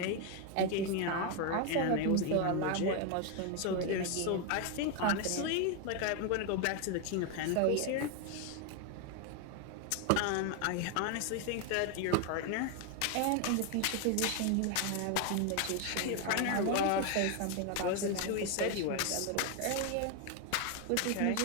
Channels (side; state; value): both; different; correlation 0.01